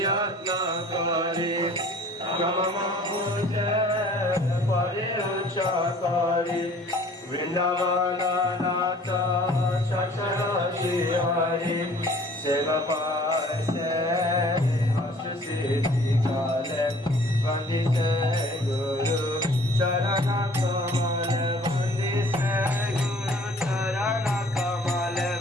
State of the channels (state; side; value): normal; both; correlation 0.52